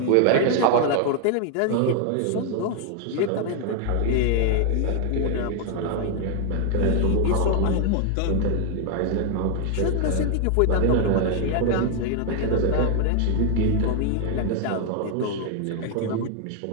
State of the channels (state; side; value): different; both; correlation 0.00